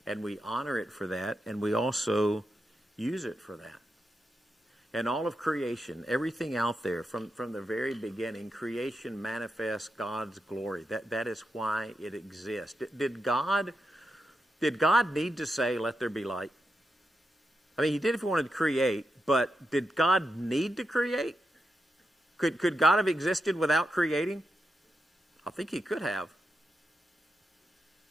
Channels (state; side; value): normal; both; correlation 0.86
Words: And we honor it for that, and we also use it for that. And all of creation, everything out there, from the very beginning, creation manifests God's glory. That is why it exists. Did God need to say, let there be light? I mean, he did if he wanted to create, but did God need to create? Could God have existed without creating? I think he could have.